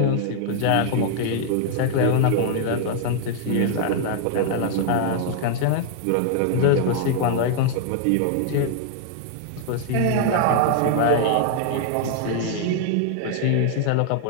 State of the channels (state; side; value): different; both; correlation 0.00